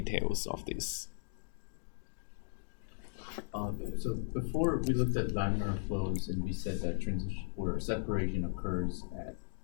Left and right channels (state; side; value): silent; right; digital silence